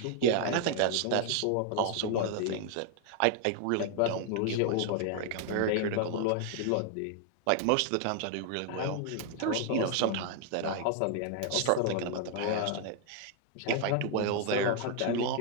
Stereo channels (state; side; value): different; both; correlation 0.00